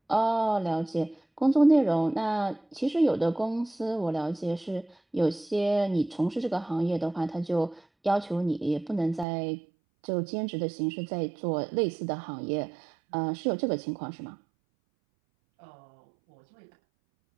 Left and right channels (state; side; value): drops out; left; at 9.2 s